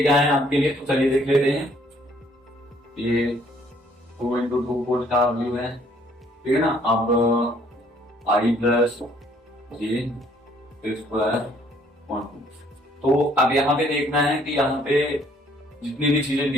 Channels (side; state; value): both; normal; correlation 0.63